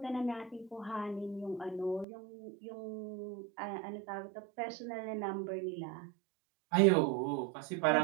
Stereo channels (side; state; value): left; drops out; at 2.1 s